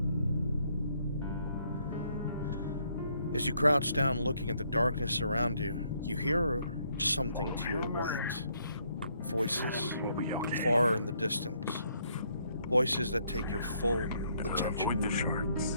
As you crouch down looking at the darkness around you, you hear something to your right. Voices far in the distance. Voices that take your full attention.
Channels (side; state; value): both; inverted; correlation -0.70